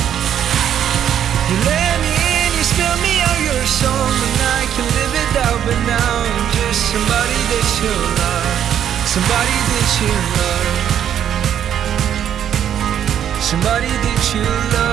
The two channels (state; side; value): quieter; left; 9.7 dB